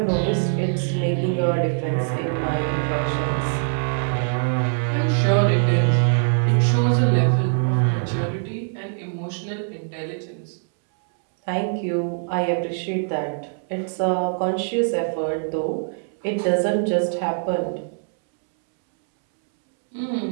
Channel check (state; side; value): silent; left; 64 dB below the other